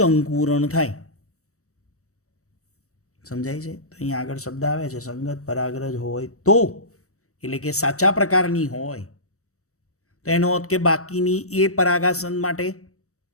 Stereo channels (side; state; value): right; late; 0.65 ms